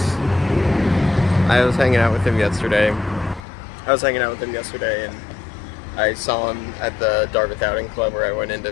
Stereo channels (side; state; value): right; drops out; at 3.5 s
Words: I was hanging out with him yesterday. And I saw him at the Dartmouth Outing Club, where I went in to